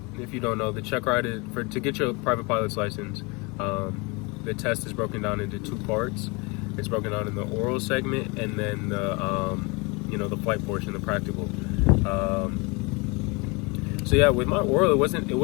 if you don't know, the check ride is to get your private pilot's license. The test is broken down into two parts. It's broken down in the oral segment and then the flight portion, the practical. So yeah, with my oral, it wasn't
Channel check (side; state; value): right; quieter; 28.2 dB